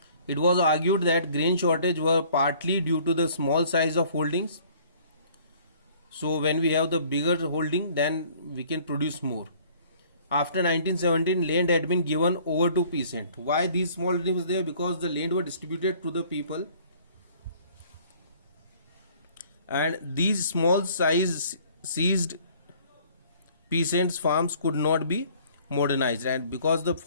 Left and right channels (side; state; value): both; inverted; correlation -0.55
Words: It was argued that grain shortage were partly due to the small size of holdings. So when we have the bigger holding, then we can produce more. After 1917, land had been given over to peasant. Why these small holdings was there? Because the land were distributed to the people, and these small size seized peasants' farms could not be modernized, and because the